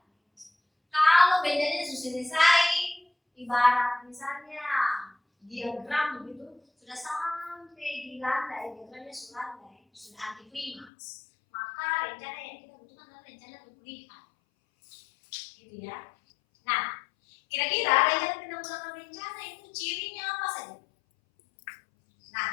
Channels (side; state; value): right; drops out; at 10.9 s